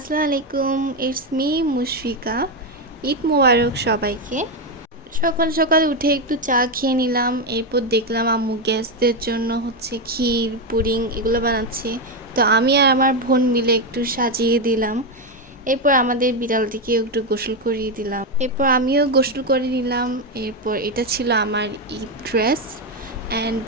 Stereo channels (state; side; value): normal; both; correlation 0.08